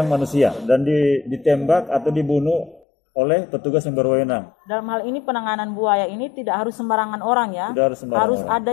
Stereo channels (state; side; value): drops out; right; at 2.8 s